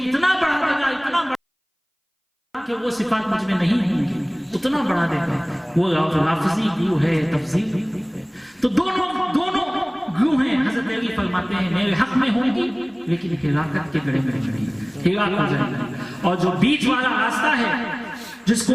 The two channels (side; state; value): both; identical; correlation 1.00